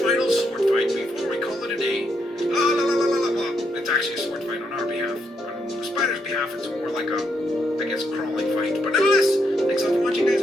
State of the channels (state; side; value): normal; both; correlation 0.78